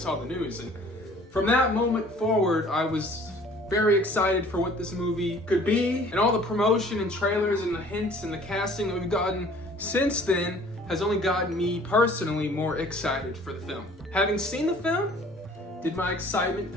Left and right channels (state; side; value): normal; both; correlation 0.52